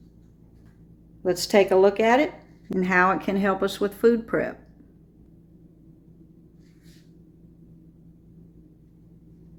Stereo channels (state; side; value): identical; both; correlation 1.00